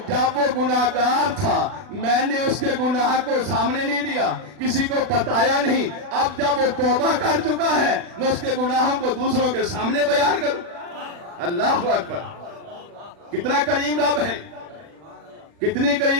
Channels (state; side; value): late; left; 40 ms